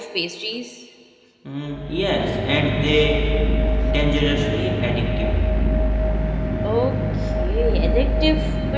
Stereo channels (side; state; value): both; identical; correlation 1.00